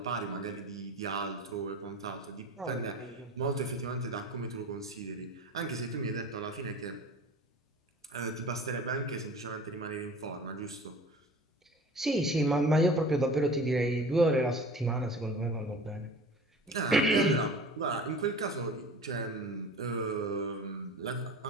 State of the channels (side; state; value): both; normal; correlation 0.40